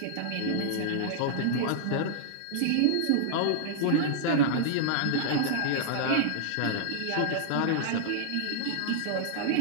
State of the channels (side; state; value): both; different; correlation -0.01